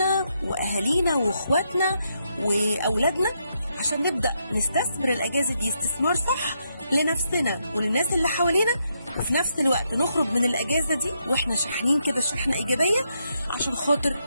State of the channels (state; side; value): inverted; both; correlation -0.79